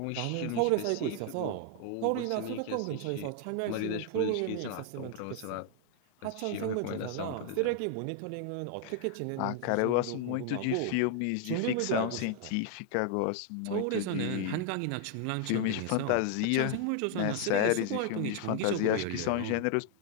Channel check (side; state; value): both; different; correlation 0.00